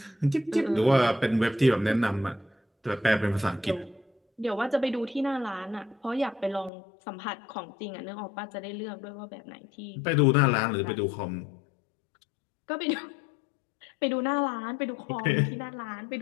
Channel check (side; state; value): right; drops out; at 6.7 s